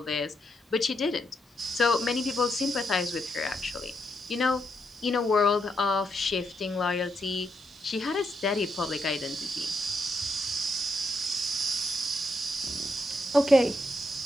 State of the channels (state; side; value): normal; both; correlation 0.80